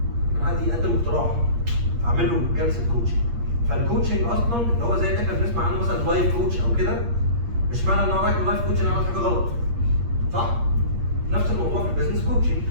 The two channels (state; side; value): late; left; 8.5 ms